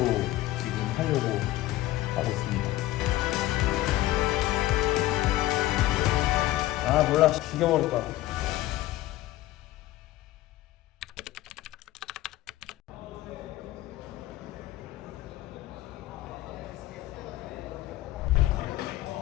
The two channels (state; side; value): quieter; right; 16.0 dB